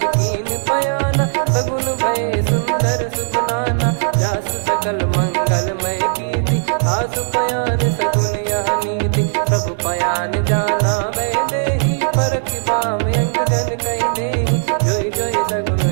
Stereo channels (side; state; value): left; silent; digital silence